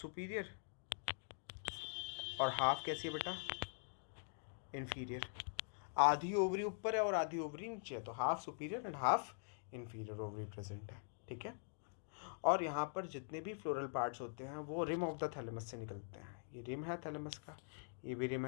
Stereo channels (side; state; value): right; silent; digital silence